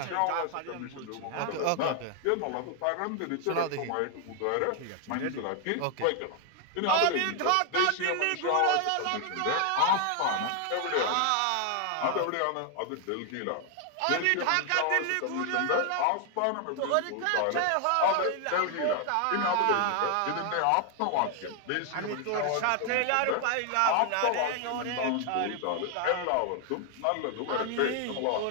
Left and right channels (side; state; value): both; different; correlation 0.00